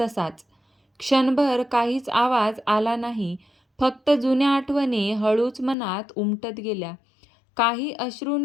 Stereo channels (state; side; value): drops out; right; at 5.8 s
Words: तसाच. क्षणभर काहीच आवाज आला नाही. फक्त जुन्या आठवणी हळूच मनात उमटत गेल्या. काही